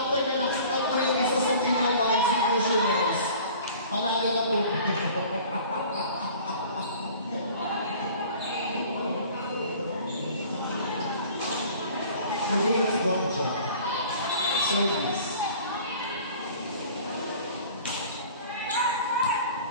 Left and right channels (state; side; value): inverted; both; correlation -0.46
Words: na nakastop po yung isa sa team ng mga Executioners. Panalo na po. Service one job. Service.